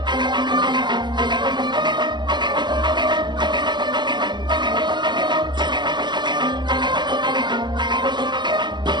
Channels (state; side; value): late; left; 0.21 ms